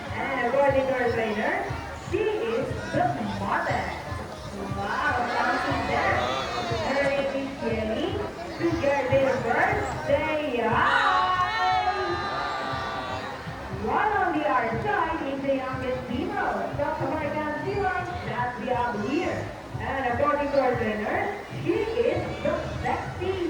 And according to our trainer, she is the mother. Wow, something there. Her name is Jenny. Together with birthday. One on the other side is the youngest female South American Sea Lion that we have here. And according to our trainer, she is the sexy,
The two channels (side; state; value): both; identical; correlation 1.00